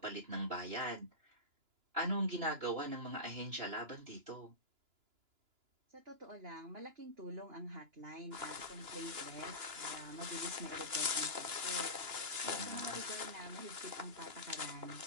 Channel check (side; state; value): left; late; 2.9 ms